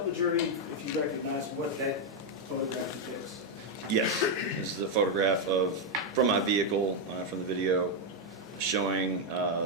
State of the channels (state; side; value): normal; both; correlation 0.01